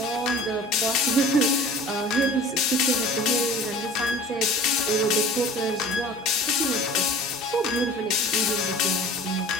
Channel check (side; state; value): both; normal; correlation 0.42